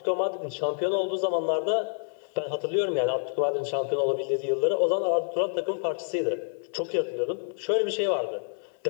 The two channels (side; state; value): right; silent; 60 dB below the other